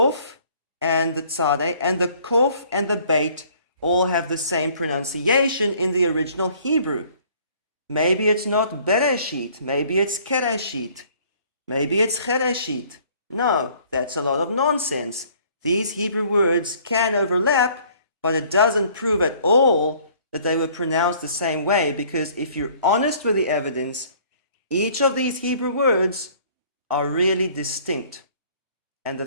and the tzadeh and the kof and the beit all have the same pronunciation in the original Hebrew? Maybe it's not Bereshit, maybe it's Kereshit, maybe it's Chereshit. No, that's a lot of nonsense. These Hebrew words can overlap, but it doesn't prove at all that they were pronounced the same way, because if you're honest with the evidence, each of these Hebrew words are really distinct. And the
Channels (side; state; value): both; inverted; correlation -0.57